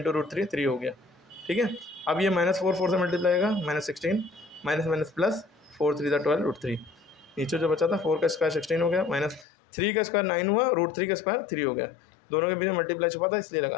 × √3 3 हो गया, ठीक है। अब ये -4 4 से मल्टीप्लाई होगा, -16, माइनस प्लस 4 3 12√3, नीचे जो बचा था 4 का स्क्वायर 16 हो गया, -3 का स्क्वायर 9 हुआ, √3 का स्क्वायर 3 हो गया, दोनों के बीच में मल्टीप्लाई छुपा था इसलिए लगा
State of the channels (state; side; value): drops out; right; at 9.5 s